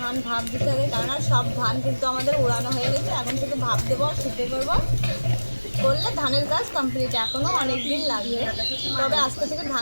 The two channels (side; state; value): both; inverted; correlation -1.00